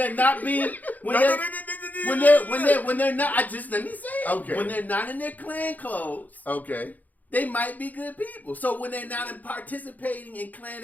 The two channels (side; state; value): right; late; 0.081 ms